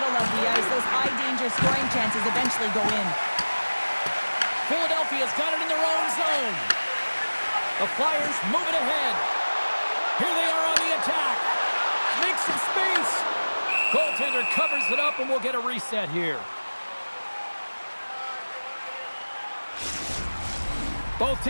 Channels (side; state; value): both; inverted; correlation -1.00